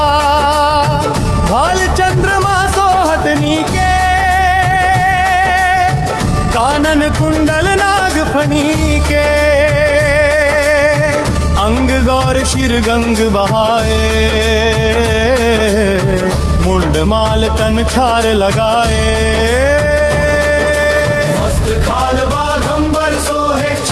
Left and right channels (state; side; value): identical; both; correlation 1.00